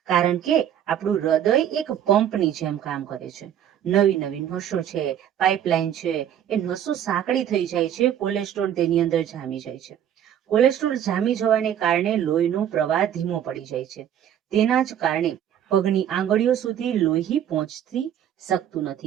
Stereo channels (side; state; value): left; quieter; 10.1 dB